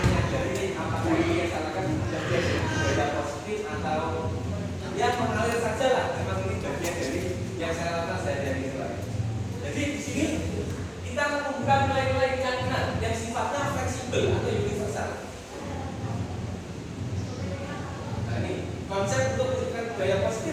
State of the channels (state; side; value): identical; both; correlation 1.00